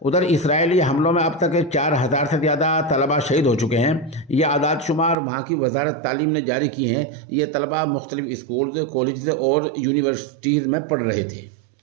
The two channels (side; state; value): left; drops out; at 5.2 s